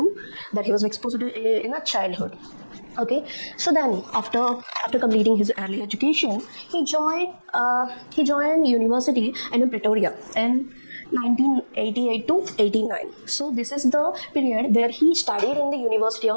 exposed to in a childhood. Okay, so then after completing his early education, he joined university in Pretoria in 1988 to 89. So this is the period where he studied in the University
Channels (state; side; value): inverted; both; correlation -1.00